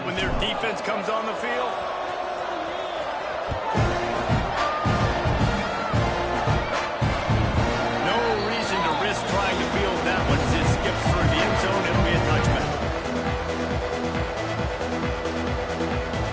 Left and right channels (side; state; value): both; identical; correlation 1.00